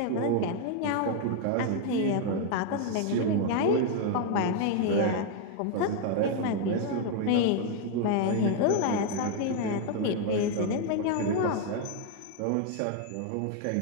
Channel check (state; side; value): different; both; correlation 0.00